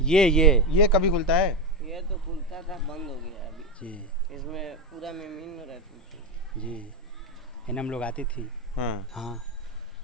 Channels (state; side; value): normal; both; correlation 0.13